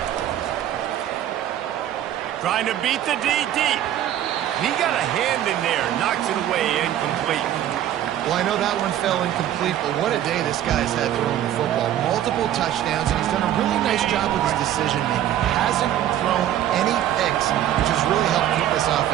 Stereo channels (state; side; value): quieter; left; 11.7 dB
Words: Trying to beat the D deep. He got a hand in there, knocks it away, incomplete. Well, I know that one fell incomplete, but what a day this guy's had throwing the football. Multiple touchdowns, and he's done a really nice job with his decision-making. Hasn't thrown any picks, which has really helped keep this